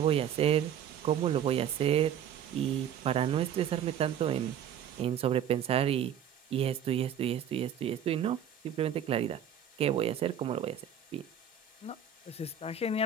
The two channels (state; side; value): quieter; left; 8.8 dB